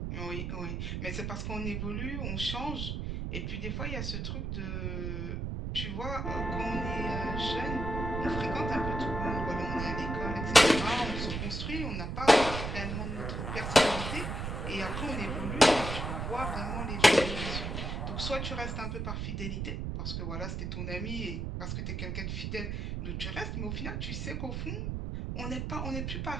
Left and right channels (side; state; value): right; noise; rumble, 3 dB below the sound